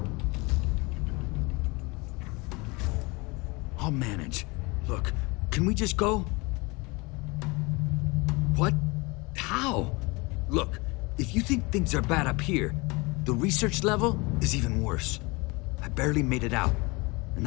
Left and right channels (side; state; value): right; quieter; 26.0 dB